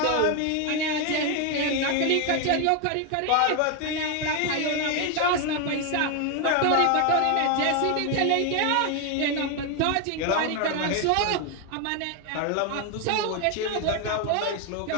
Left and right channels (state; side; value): different; both; correlation 0.01